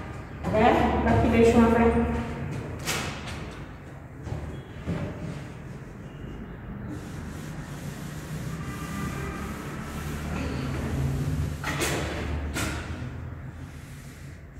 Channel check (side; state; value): both; identical; correlation 1.00